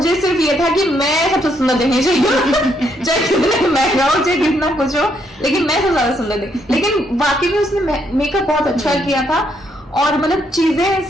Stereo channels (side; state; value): both; normal; correlation 0.74